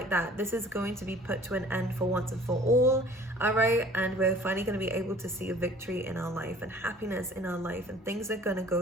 that. This is going to be put to an end for once and for all. All right. And we're finally going to be able to see a victory in our life and happiness in our life, and things are going to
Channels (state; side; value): normal; both; correlation 0.50